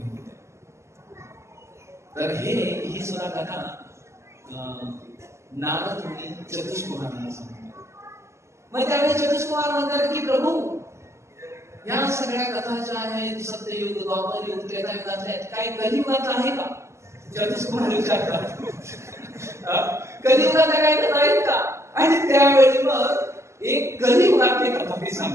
होत्या. तर ही सुद्धा कथा नारद मुनी चतुष्कुमारांना सांगतात. मग त्यावेळी चतुष्कुमार म्हणतात की प्रभू, या सगळ्या कथा ज्या आहेत सत्ययुग, द्वापर युग, त्रेतायुगातल्या आहेत, काही कलियुगात आहे का? चतुष्कुमार विचारतात, कलियुगात काही कथा आहेत का? आणि त्यावेळी मग एक कलियुगातली कथा ते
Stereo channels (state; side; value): late; left; 0.13 ms